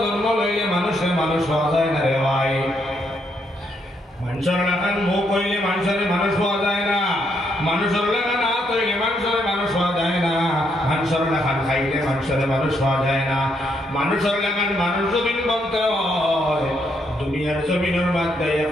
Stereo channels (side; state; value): both; normal; correlation 0.75